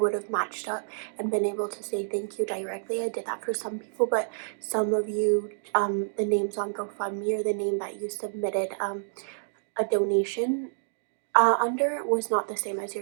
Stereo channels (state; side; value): silent; left; digital silence